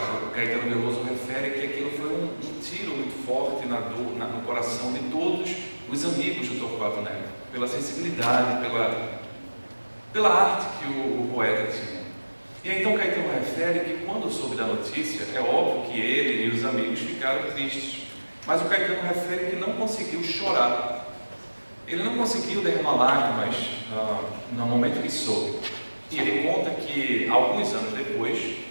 Caetano Veloso refere que aquilo foi um tiro muito forte no coração de todos os amigos do Torquato Neto, pela sensibilidade, pela arte que o poeta tinha. E aí, então Caetano refere que quando soube da notícia, é óbvio que ele e os amigos ficaram tristes, mas o Caetano refere que não conseguiu chorar. Ele não conseguiu derramar lágrimas no momento que soube. E ele conta que, alguns anos depois,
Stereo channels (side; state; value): both; inverted; correlation -1.00